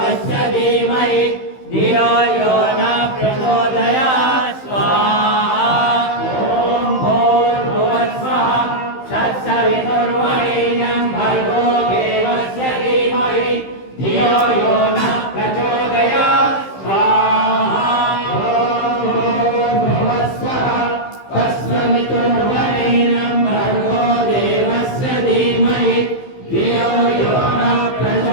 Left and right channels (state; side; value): late; right; 15 ms